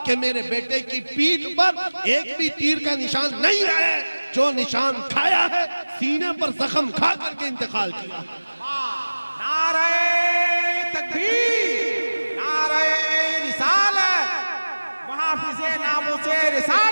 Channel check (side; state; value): both; inverted; correlation -1.00